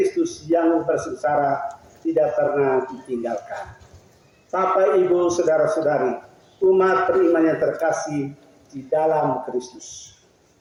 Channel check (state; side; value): identical; both; correlation 1.00